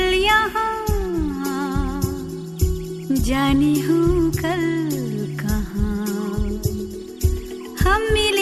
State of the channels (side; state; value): both; identical; correlation 1.00